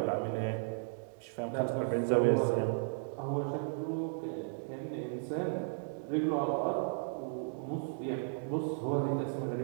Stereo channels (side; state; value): left; silent; digital silence